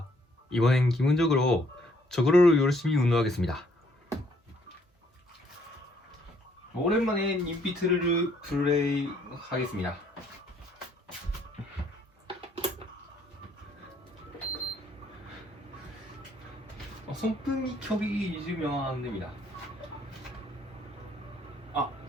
이번엔 기본적으로 저거를 열심히 운동하겠습니다. 오랜만에 인피트를 플레이 하겠습니다. 손등이 켜기 잊으면 안 됩니다.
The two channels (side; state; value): both; normal; correlation 0.66